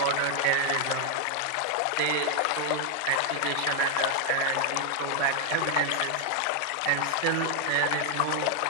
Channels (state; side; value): different; both; correlation 0.00